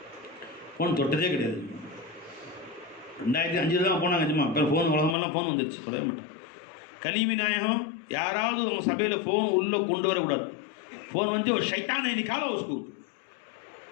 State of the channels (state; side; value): drops out; right; at 5.2 s